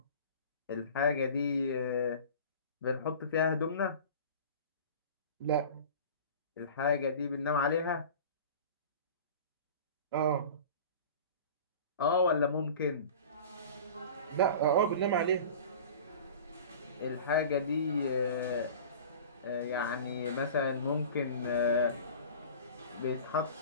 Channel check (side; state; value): both; inverted; correlation -0.38